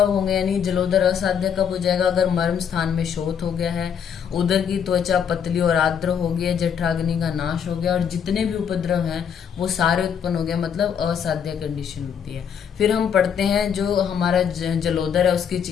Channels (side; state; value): right; quieter; 7.7 dB